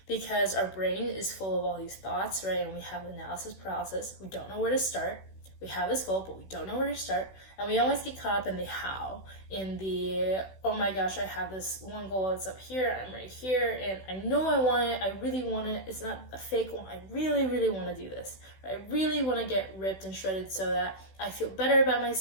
because our brain is full of all these thoughts, right? And we have analysis paralysis. We don't know where to start. We have this goal, but we don't know where to start. And we always get caught up in the how, in the, oh my gosh, I have this one goal, it's up here, I'm right here, and I know I want it, I really want it, it's not a fake one, I really, really want to do this. I really want to get ripped and shredded so that I feel better about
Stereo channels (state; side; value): late; right; 16 ms